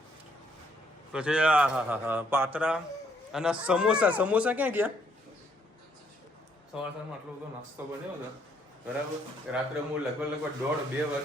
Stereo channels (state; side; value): normal; both; correlation 0.69